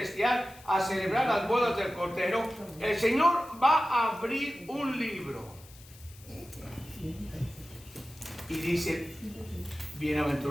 a celebrar las bodas del Cordero, el Señor va a abrir un libro. Y dice,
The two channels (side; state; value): left; noise; hiss, 22 dB below the sound